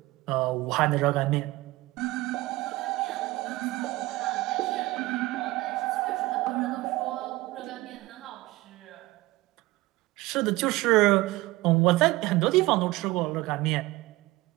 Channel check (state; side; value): quieter; left; 19.6 dB